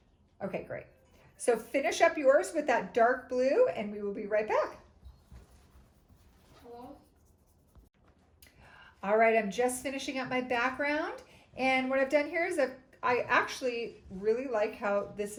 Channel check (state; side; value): identical; both; correlation 1.00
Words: Okay, great. So finish up yours with that dark blue, and we will be right back. Hello? All right, I'm just finishing up my background, and what I've done here is I actually really like how this